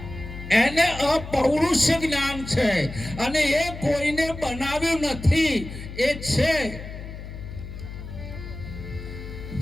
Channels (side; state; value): left; noise; hum, 11 dB below the sound